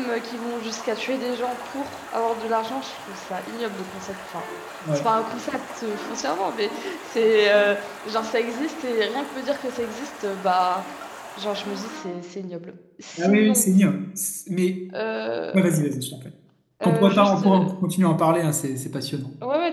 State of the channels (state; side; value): identical; both; correlation 1.00